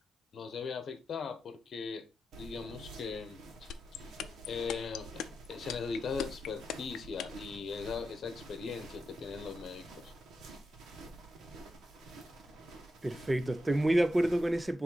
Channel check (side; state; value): both; normal; correlation 0.88